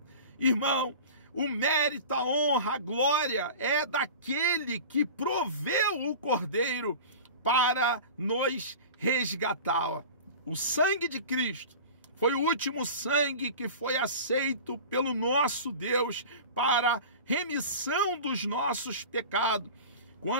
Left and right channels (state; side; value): inverted; both; correlation -0.35